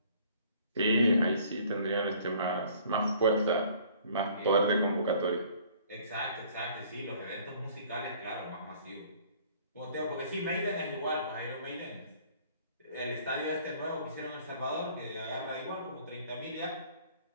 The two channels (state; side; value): inverted; both; correlation -0.56